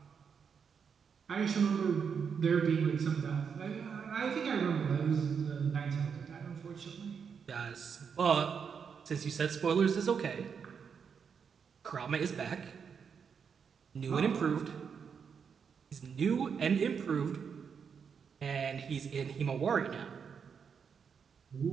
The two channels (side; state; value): left; quieter; 6.6 dB